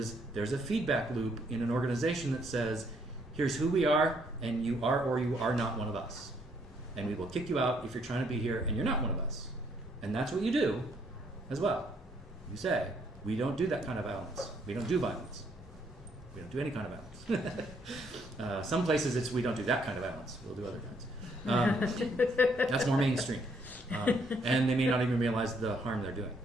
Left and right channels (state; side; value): normal; both; correlation 0.69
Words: there's a feedback loop in an organization that says, here's who we are, and you are or you are not one of us. And we will kick you out if you're trying to be here and you're not one of us. And that's what you do as well. You say, we don't do that kind of violence. We don't do violence. We don't do any kind of violence. Some places it's we don't do that kind of violence. We'll do other kinds. That's more mainstream. And they may not even realize the harm they're doing.